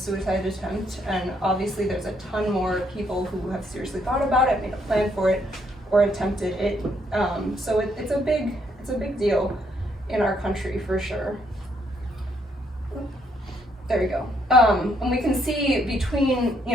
attempt. And obviously there's a ton more people who have seriously thought about it, made a plan for it, or attempted it. So it's a big deal in our country for sure. There we go. And we can see between,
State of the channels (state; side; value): normal; both; correlation 0.72